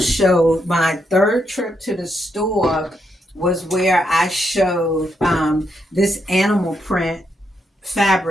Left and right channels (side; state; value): both; normal; correlation 0.80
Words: my third trip to the store was where I showed this animal print